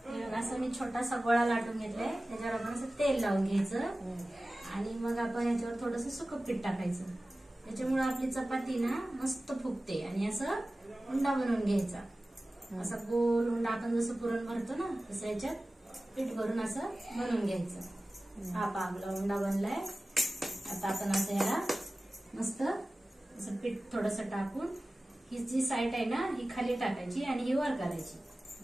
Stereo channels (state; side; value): normal; both; correlation 0.96